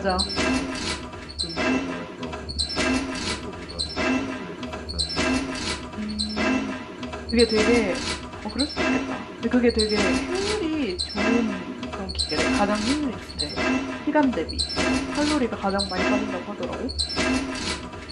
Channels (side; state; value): both; identical; correlation 1.00